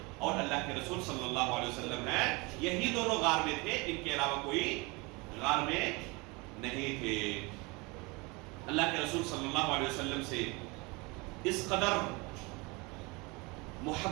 اور اللہ کے رسول صلی اللہ علیہ وسلم ہیں. یہی دونوں غار میں تھے، ان کے علاوہ کوئی غار میں نہیں تھے. اللہ کے رسول صلی اللہ علیہ وسلم سے اس قدر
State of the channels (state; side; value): quieter; left; 26.5 dB